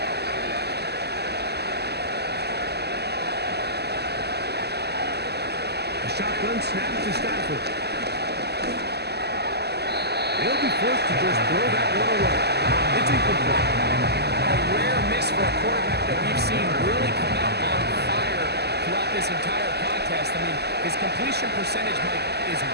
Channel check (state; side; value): late; left; 0.48 ms